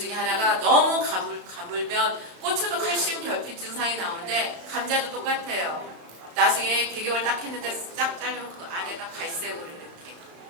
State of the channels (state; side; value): late; left; 35 ms